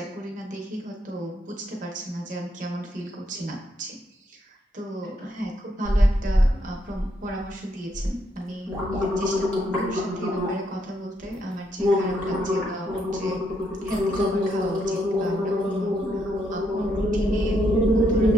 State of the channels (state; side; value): normal; both; correlation 0.76